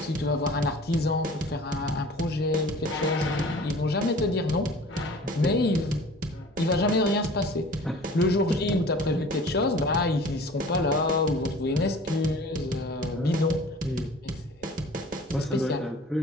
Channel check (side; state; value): both; normal; correlation 0.45